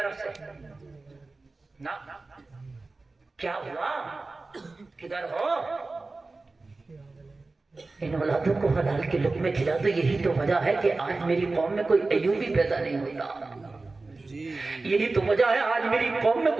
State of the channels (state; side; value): quieter; left; 3.5 dB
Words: سے نا کیا ہوا کدھر ہو ان اولادوں کو حلال کے لقمے کھلا دو یہی تو وجہ ہے کہ آج میری قوم میں کوئی ایوبی پیدا نہیں ہوتا یہی تو وجہ ہے آج میری قوم میں